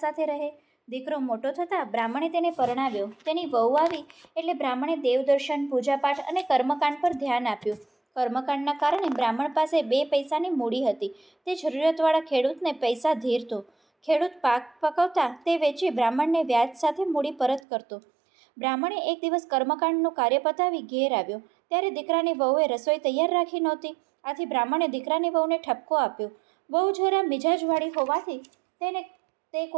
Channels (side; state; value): left; drops out; at 17.6 s